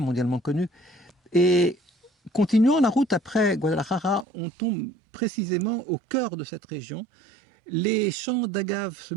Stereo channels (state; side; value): drops out; left; at 4.2 s